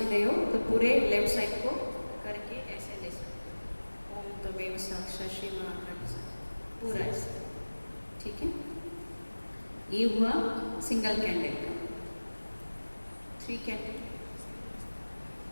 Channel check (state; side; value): inverted; both; correlation -1.00